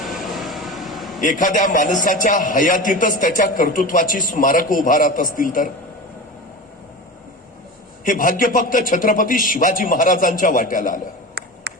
एखाद्या माणसाच्या हयातीतच त्याच्या कर्तृत्वाची स्मारक उभारत असतील तर हे भाग्य फक्त छत्रपती शिवाजी महाराजांच्या वाट्याला आलं.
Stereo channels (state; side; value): normal; both; correlation 0.29